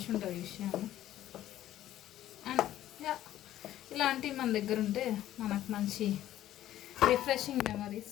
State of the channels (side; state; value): right; quieter; 13.1 dB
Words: ఉంటుంది ఈ విషయాలు. అండ్ ఇలాంటివి మన దగ్గర ఉంటే మనకు మంచి రిఫ్రెషింగ్